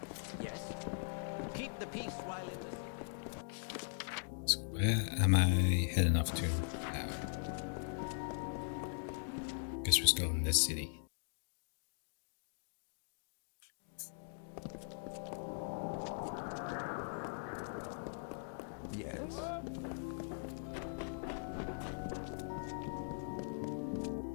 Yes. Keep the peace while in the... So where am I heading off to now? Guess we're still in this city. Yes.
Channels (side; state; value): right; silent; digital silence